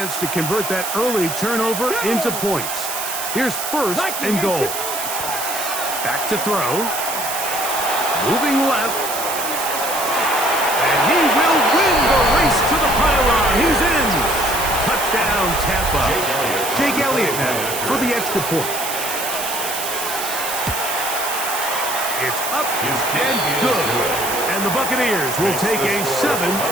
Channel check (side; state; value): right; noise; hiss, 5 dB below the sound